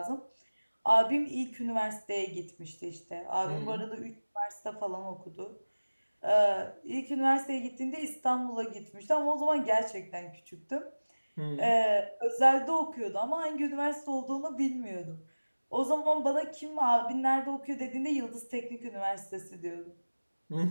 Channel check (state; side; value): inverted; both; correlation -1.00